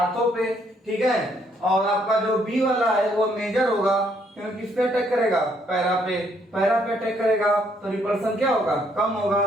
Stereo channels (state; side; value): normal; both; correlation 0.69